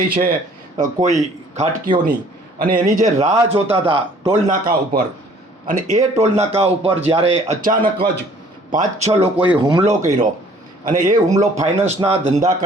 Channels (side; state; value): both; normal; correlation 0.56